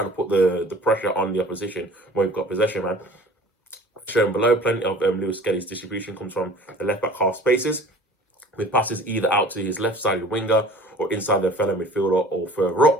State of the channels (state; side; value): normal; both; correlation 0.46